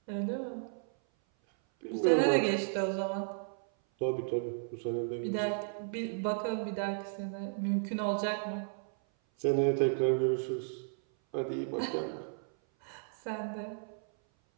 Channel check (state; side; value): silent; left; 55 dB below the other